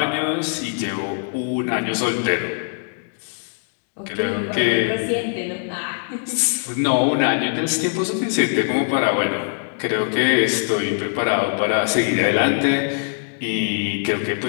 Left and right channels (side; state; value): right; silent; digital silence